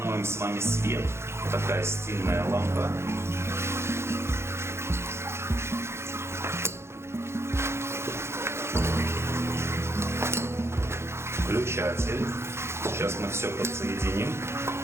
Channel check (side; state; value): left; late; 0.13 ms